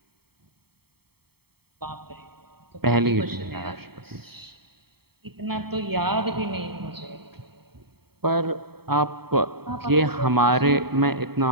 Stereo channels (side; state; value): left; late; 0.96 ms